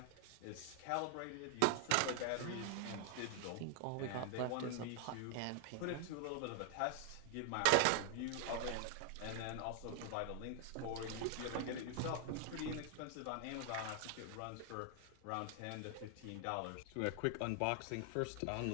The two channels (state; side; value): different; both; correlation 0.00